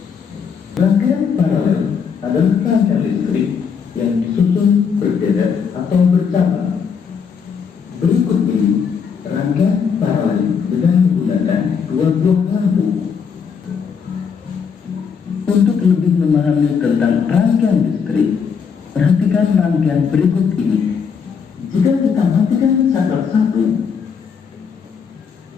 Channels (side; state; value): right; quieter; 6.4 dB